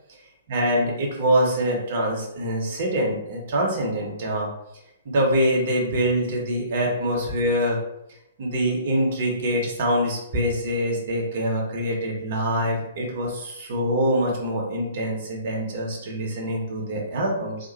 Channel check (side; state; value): both; inverted; correlation -0.53